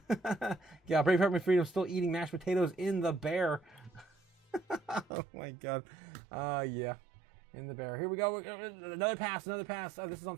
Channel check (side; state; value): left; drops out; at 5.1 s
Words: Yeah, Brave Heart My Freedom still eating mashed potatoes in the bear. Oh my God. Yeah. In the bear. Here we go. Another pass. This